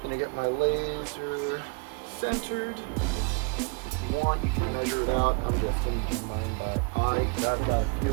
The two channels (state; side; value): quieter; left; 33.1 dB